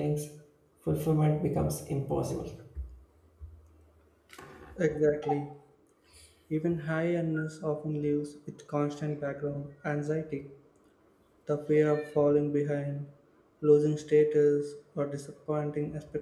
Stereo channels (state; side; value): identical; both; correlation 1.00